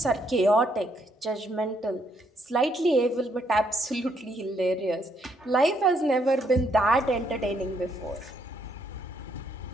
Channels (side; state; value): both; normal; correlation 0.72